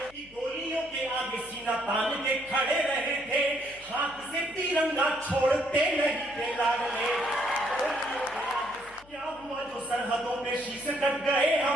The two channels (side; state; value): left; noise; hum, 25 dB below the sound